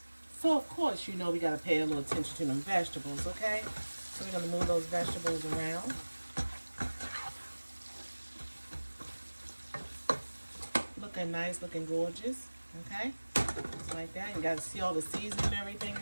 So of course, you know we gotta pay a little attention to them vegetables, okay? So we're gonna move those vegetables around. Looking nice, looking gorgeous, okay? Just like that. You gotta see all the seasoning and everything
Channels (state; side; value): inverted; both; correlation -1.00